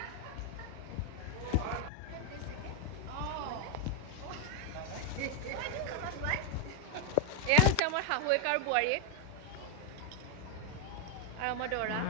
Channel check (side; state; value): both; different; correlation 0.01